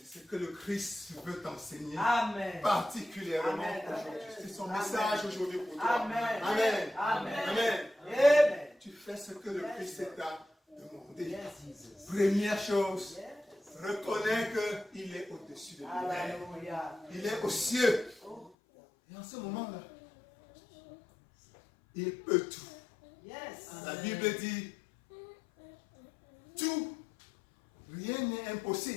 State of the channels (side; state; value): right; drops out; at 18.5 s